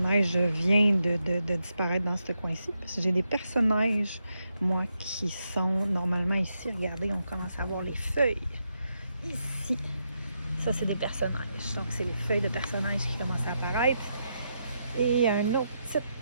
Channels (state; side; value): inverted; both; correlation -0.83